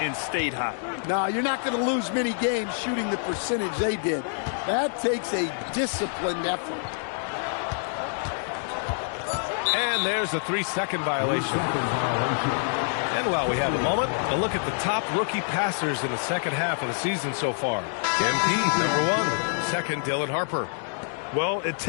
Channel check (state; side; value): silent; right; digital silence